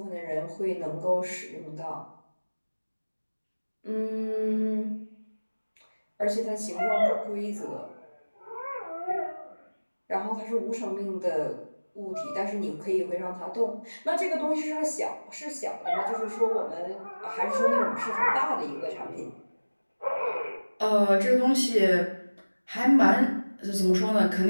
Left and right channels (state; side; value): inverted; both; correlation -1.00